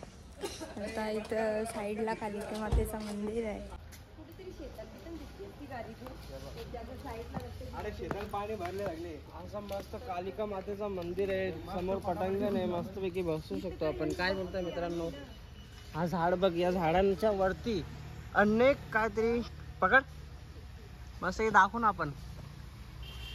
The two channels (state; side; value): identical; both; correlation 1.00